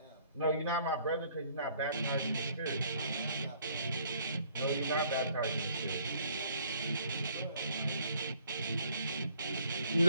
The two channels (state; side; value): inverted; both; correlation -0.61